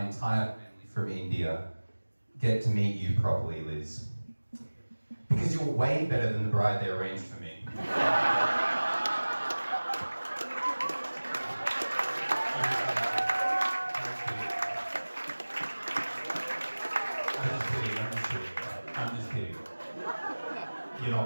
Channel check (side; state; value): both; inverted; correlation -1.00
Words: entire family from India get to meet you properly, Liz. Because you're way better than the bride they arranged for me. I'm just kidding. You're